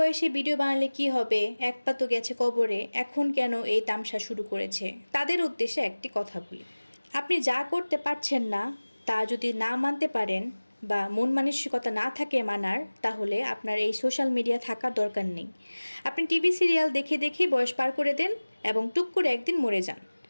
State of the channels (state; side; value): inverted; both; correlation -1.00